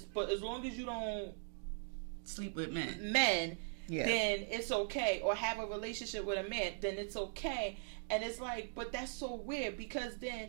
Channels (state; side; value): silent; left; digital silence